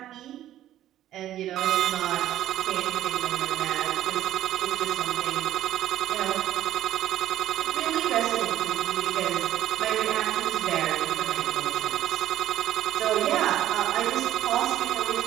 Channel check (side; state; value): left; quieter; 12.7 dB